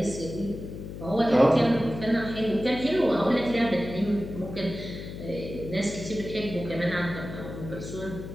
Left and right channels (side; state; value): left; noise; hum, 10 dB below the sound